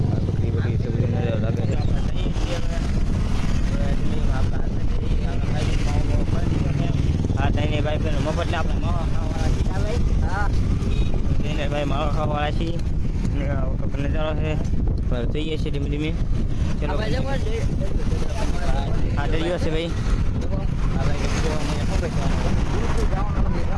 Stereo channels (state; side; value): identical; both; correlation 1.00